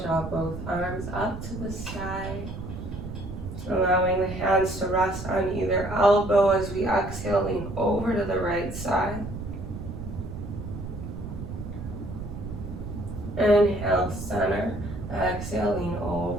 draw both arms up to the sky. Allowing the hands to rest on either elbow as we exhale, lean over to the right side. Inhale, center. Exhale, lean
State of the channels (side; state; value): right; noise; rumble, 8 dB below the sound